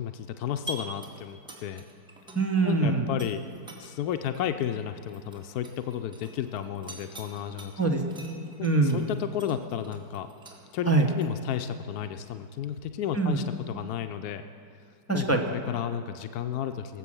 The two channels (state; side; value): late; right; 4.6 ms